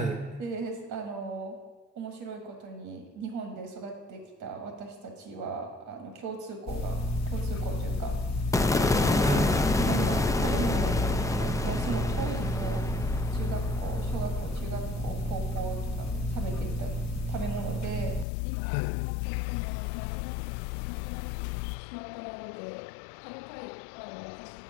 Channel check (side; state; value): right; drops out; at 18.2 s